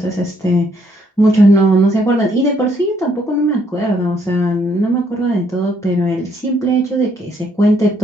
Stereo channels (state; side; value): normal; both; correlation 0.70